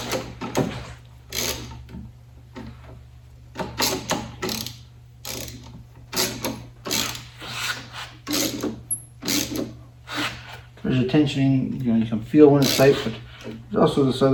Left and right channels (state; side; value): identical; both; correlation 1.00